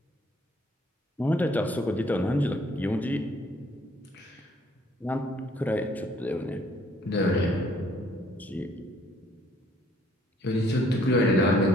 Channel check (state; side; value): normal; both; correlation 0.62